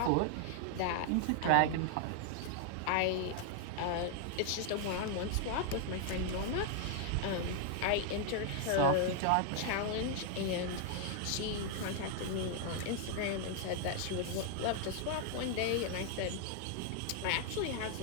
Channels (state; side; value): different; both; correlation 0.00